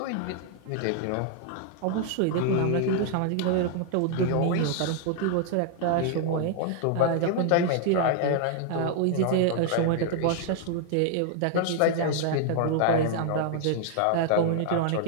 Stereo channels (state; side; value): different; both; correlation 0.00